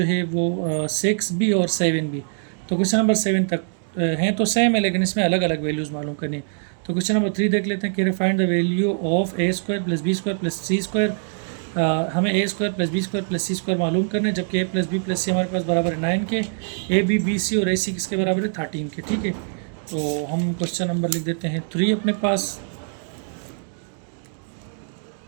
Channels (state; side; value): silent; left; digital silence